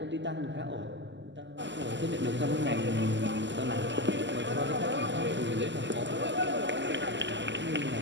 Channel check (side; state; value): left; late; 0.53 ms